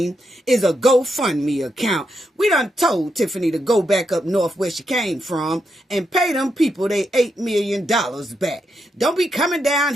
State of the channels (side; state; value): both; normal; correlation 0.82